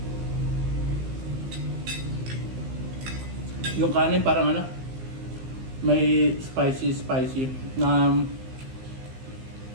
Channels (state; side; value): late; left; 15 ms